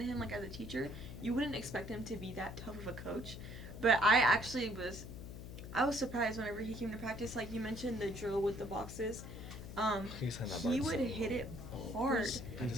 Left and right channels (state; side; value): noise; left; hum, 10 dB below the sound